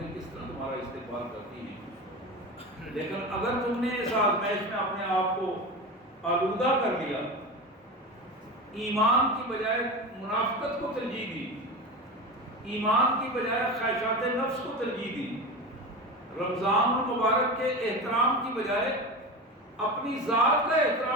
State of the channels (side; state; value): both; normal; correlation 0.26